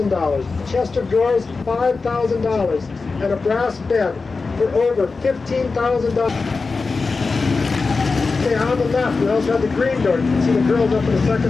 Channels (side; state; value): right; quieter; 4.2 dB